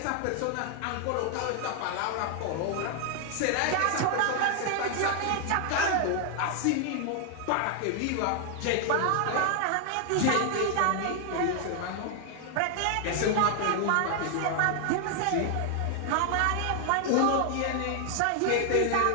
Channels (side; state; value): both; different; correlation 0.00